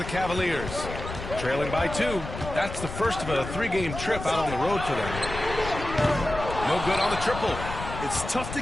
Cavaliers. Trailing by 2. That's the first of a 3-game trip out on the road for them. No good on the triple. It's tough to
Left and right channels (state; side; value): noise; left; rumble, 8 dB below the sound